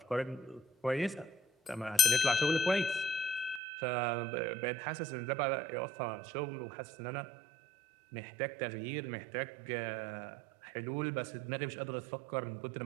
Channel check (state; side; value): drops out; left; at 3.6 s